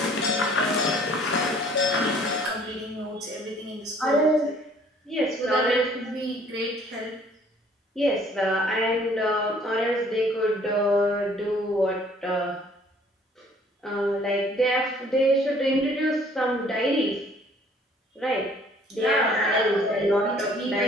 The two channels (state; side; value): normal; both; correlation 0.58